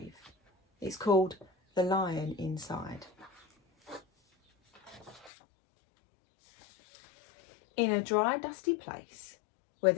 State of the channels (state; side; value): drops out; right; at 5.3 s